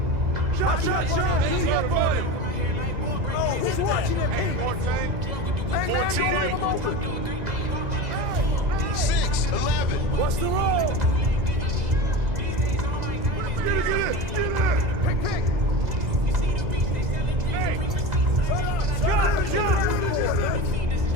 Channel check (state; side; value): late; left; 2.0 ms